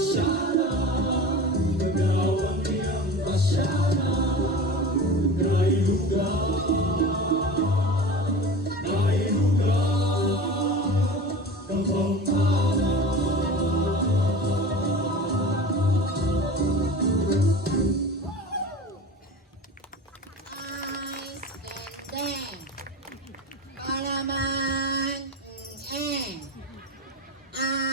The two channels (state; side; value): normal; both; correlation 0.34